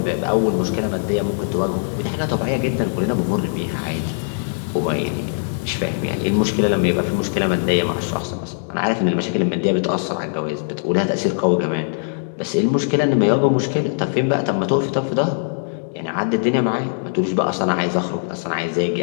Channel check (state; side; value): silent; right; digital silence